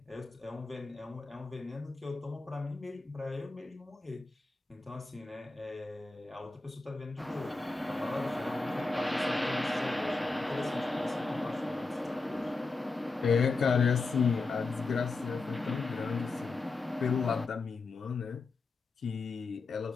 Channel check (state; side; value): quieter; right; 3.7 dB